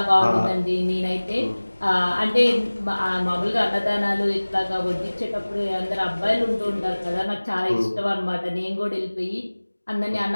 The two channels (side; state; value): both; inverted; correlation -1.00